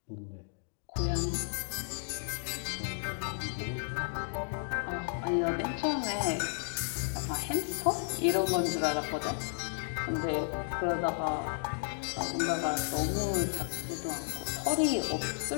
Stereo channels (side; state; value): right; silent; digital silence